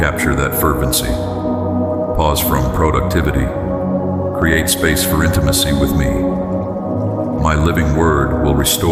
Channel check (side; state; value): both; identical; correlation 1.00